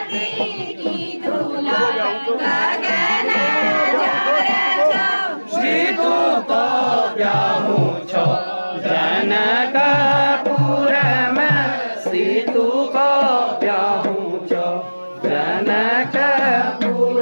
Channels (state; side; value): inverted; both; correlation -1.00